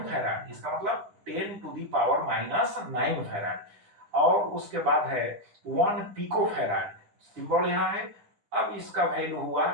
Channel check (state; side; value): late; left; 10 ms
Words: फैराड, इसका मतलब 10 to the power minus 9 farad. और उसके बाद है 1 पिको फैराड, सिंबल यहां है। अब इसका वैल्यू हुआ